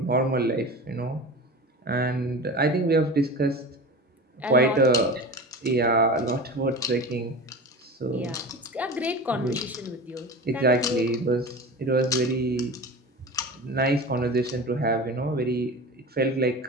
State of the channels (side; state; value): both; normal; correlation 0.32